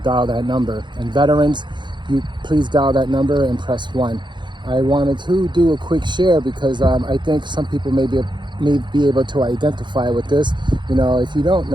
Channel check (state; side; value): late; left; 0.22 ms